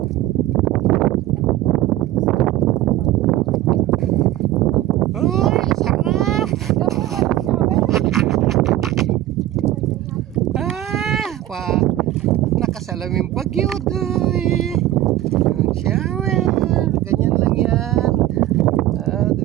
Uy, sarap! Nakasalaming bagyo doy. Yung shower, ganyan lang yan.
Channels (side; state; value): left; quieter; 14.3 dB